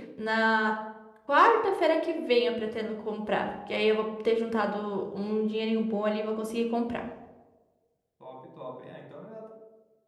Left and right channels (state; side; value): identical; both; correlation 1.00